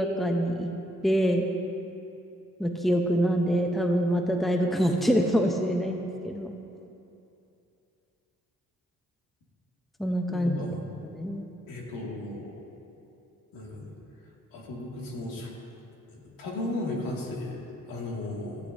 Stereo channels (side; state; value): both; normal; correlation 0.76